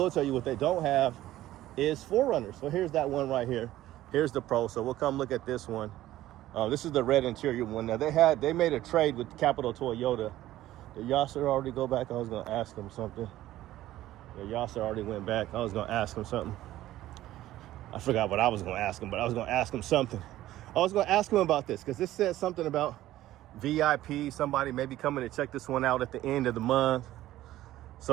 tell you. What they don't have is 4Runners. So here's that one right here. Here's the Pro. So we'll come look at this one. This is the red interior one. Now they made a trade with Capital Toyota. Did Yasser already go back? I was gonna ask him something. Yeah, Yasser already went back. I was gonna ask him something. I forgot what I was gonna ask him, but I was gonna ask him something. I was gonna ask him about this because this said something about VIP. Somebody maybe coming to check this one out at the end of the month.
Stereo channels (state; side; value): quieter; left; 14.6 dB